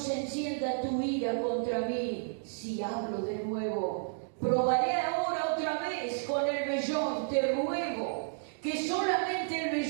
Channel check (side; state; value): left; silent; digital silence